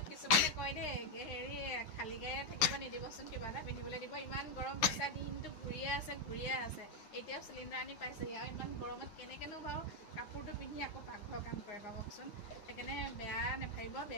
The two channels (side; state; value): right; late; 10 ms